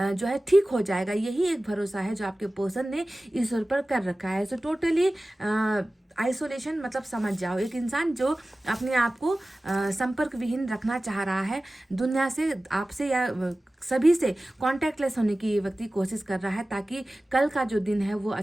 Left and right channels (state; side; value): normal; both; correlation 0.97